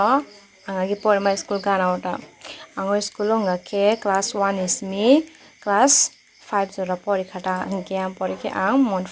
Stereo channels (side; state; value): both; identical; correlation 1.00